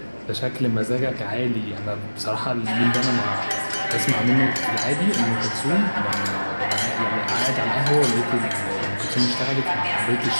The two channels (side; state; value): both; inverted; correlation -1.00